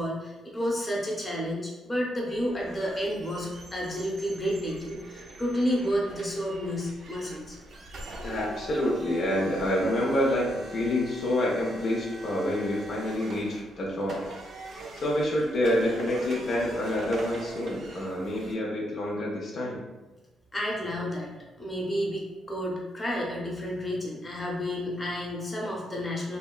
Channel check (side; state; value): both; normal; correlation 0.78